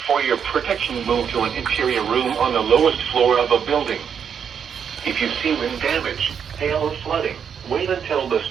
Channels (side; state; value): left; quieter; 7.5 dB